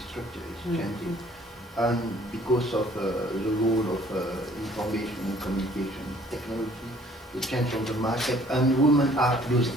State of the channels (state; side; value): normal; both; correlation 0.57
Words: structure is changing, and because of the role of information and communication technology, the change on the market, and women are